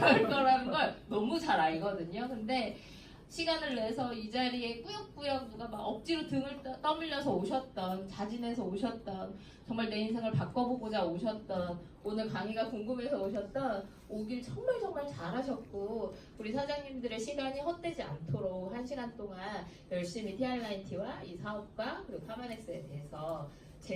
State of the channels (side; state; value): both; identical; correlation 1.00